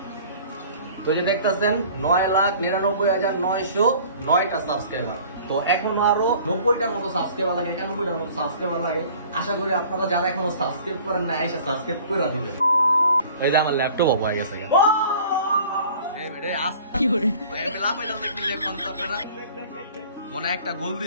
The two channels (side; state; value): both; inverted; correlation -0.48